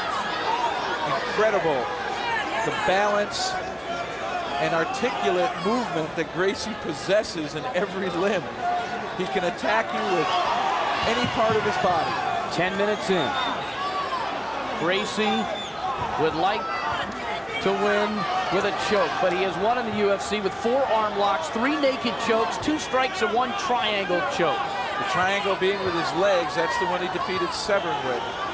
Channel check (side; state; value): both; identical; correlation 1.00